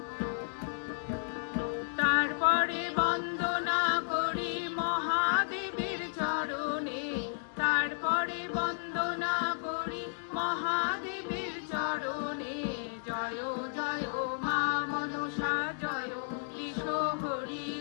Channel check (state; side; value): silent; right; digital silence